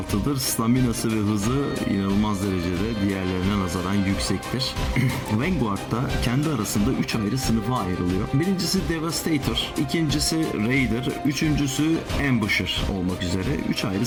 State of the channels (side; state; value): both; identical; correlation 1.00